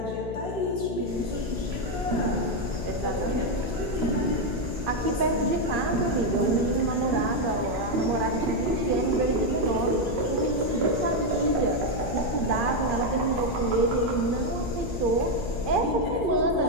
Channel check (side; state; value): left; noise; hum, 7 dB below the sound